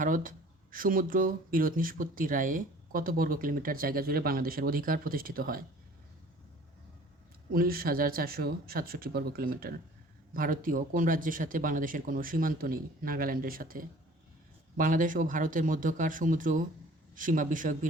সমুদ্র বিরোধ নিষ্পত্তি রায়ে কত বর্গ কিলোমিটার জায়গা জুড়ে বাংলাদেশের অধিকার প্রতিষ্ঠিত হয়? 19,467 বর্গ কিলোমিটার। ভারতীয় কোন রাজ্যের সাথে বাংলাদেশের কোনো সীমান্ত নেই? নাগাল্যান্ডের সাথে। বাংলাদেশ ও ভারতের মধ্যকার সমুদ্র সীমা বিষয়ক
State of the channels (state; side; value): normal; both; correlation 0.50